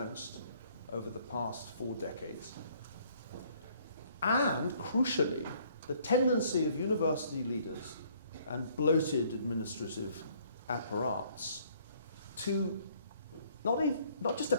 over the past 4 decades, and, crucially, the tendency of university leaders and bloated administrative apparatus to not just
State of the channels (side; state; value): both; inverted; correlation -0.62